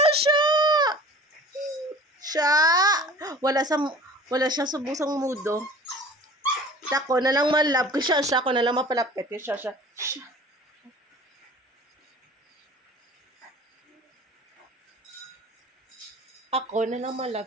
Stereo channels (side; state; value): both; normal; correlation 0.43